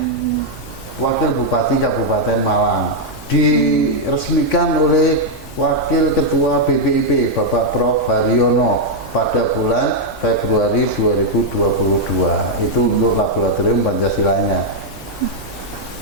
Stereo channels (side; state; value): left; noise; hum, 24 dB below the sound